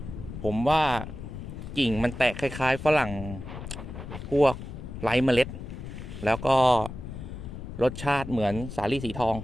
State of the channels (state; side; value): noise; left; rumble, 9 dB below the sound